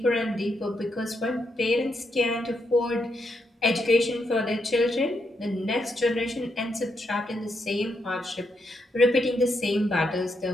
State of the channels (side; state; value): both; normal; correlation 0.80